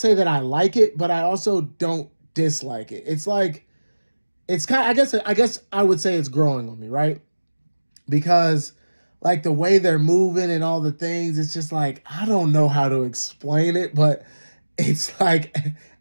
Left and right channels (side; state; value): both; inverted; correlation -1.00